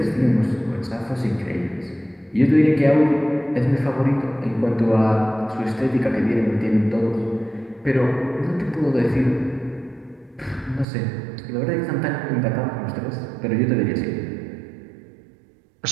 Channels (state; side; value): drops out; left; at 10.9 s